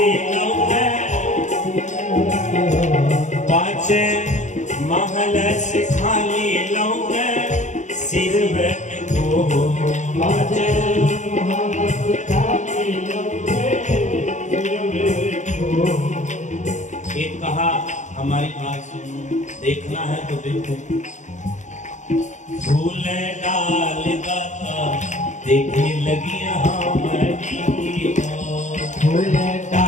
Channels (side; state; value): right; late; 0.35 ms